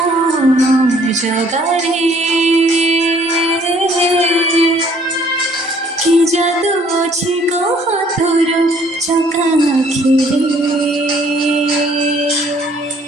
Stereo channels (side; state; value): both; normal; correlation 0.60